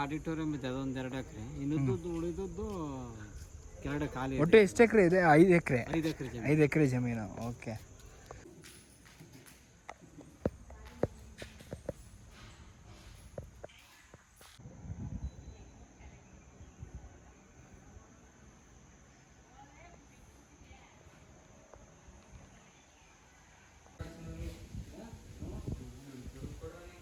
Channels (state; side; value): identical; both; correlation 1.00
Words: ಆಡಿಟೋರಿಯಂ ಇದೆ, ಅದೊಂದು 2 ಎಕರೆ. ಇನ್ನದ್ದು ಉಳಿದದ್ದು ಕೆಳಗಡೆ ಖಾಲಿ. ಒಟ್ಟು ಎಷ್ಟು ಎಕರೆ ಇದೆ? 5 ಎಕರೆ. 5 ಎಕರೆ ಜಮೀನು. 5 ಎಕರೆ ಜಮೀನು. ಓಕೆ.